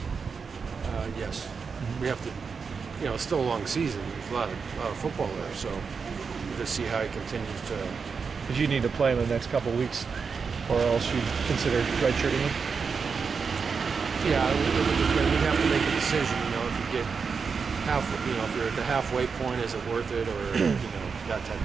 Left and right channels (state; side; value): quieter; left; 5.5 dB